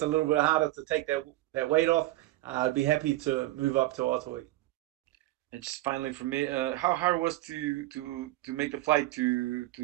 a little bit harder to take that weight off. I'd be happy to move up to welterweight. And just finally for me, how hard was to make the flight to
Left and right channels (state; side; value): quieter; left; 17.1 dB